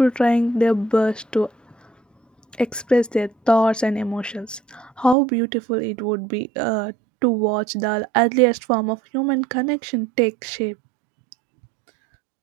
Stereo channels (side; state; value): left; drops out; at 5.2 s